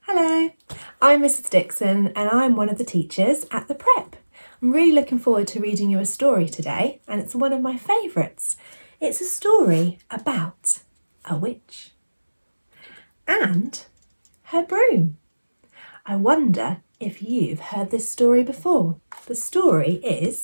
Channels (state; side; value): inverted; both; correlation -1.00